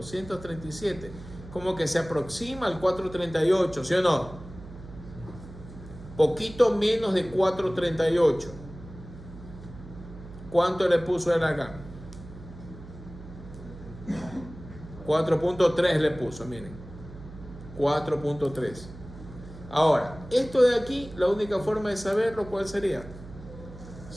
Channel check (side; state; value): right; noise; hum, 15 dB below the sound